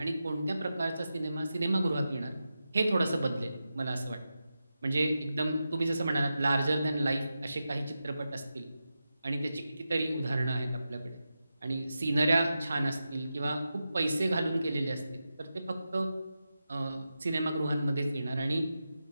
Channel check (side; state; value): both; inverted; correlation -0.90